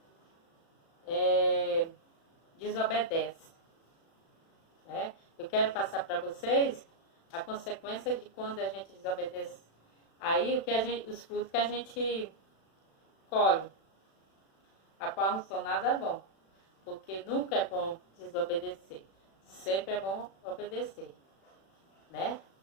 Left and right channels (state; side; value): late; right; 36 ms